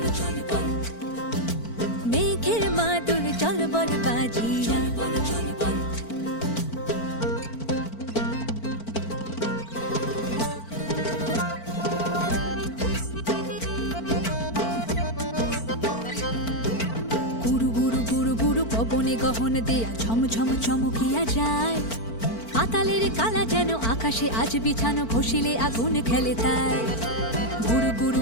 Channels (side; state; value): right; late; 4.5 ms